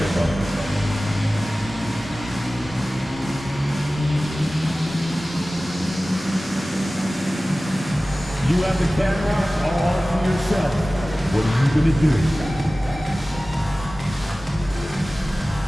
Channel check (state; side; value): normal; both; correlation 0.97